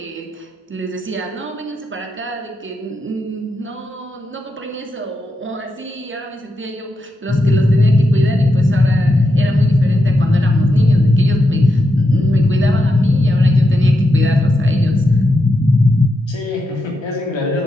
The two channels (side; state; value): both; normal; correlation 0.85